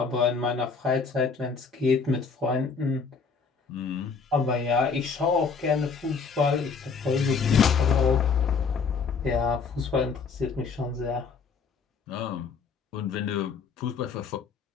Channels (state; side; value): quieter; right; 5.3 dB